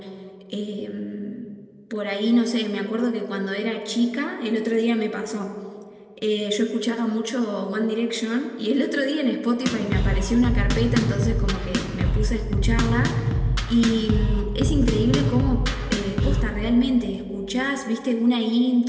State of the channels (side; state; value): both; identical; correlation 1.00